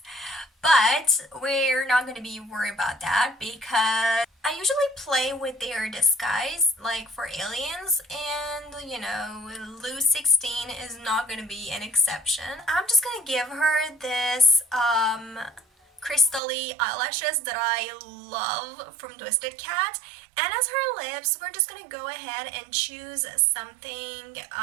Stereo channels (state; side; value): drops out; left; at 16.4 s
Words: But we're not going to be worried about that because I usually play with their disguise, like for aliens, and you know, Lou 16 is not going to be an exception. I'm just going to give her this crystally eyelashes that I love from Twisted Cat. And as her lips, we're just gonna go ahead and choose something